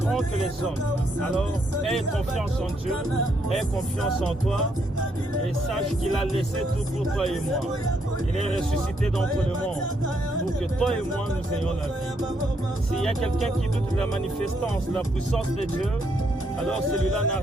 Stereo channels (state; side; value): normal; both; correlation 0.74